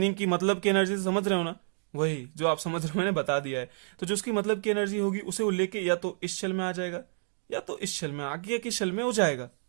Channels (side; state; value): left; silent; digital silence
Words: की मतलब की एनर्जी समझ रहे हो ना, वही जो आप समझ रहे हो मैंने बता दिया है। तो जो उसकी मतलब की एनर्जी होगी उसे वो लेके या तो इस शेल में आ जाएगा, या तो इस शेल में आगे की शेल में हो जाएगा,